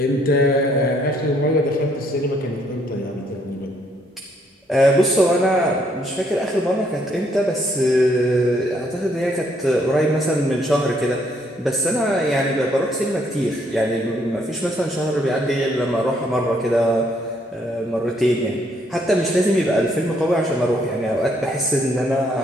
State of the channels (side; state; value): both; normal; correlation 0.69